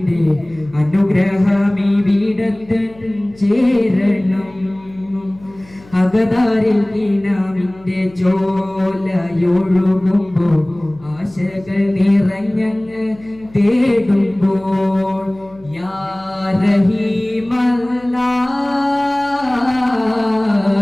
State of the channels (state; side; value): noise; left; hum, 25 dB below the sound